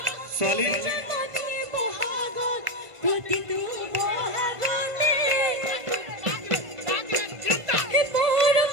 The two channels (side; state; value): left; late; 1.5 ms